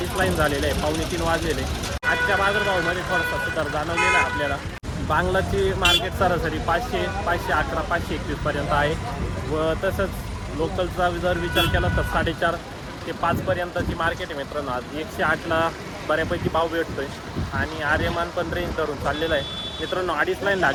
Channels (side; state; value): both; identical; correlation 1.00